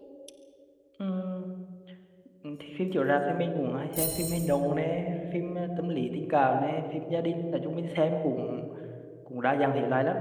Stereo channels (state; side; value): identical; both; correlation 1.00